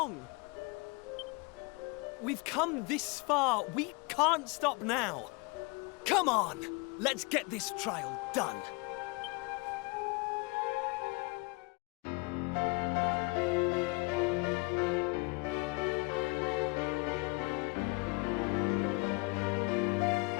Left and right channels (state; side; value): quieter; right; 28.8 dB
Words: We've come this far. We can't stop now. Come on, let's get this trial done.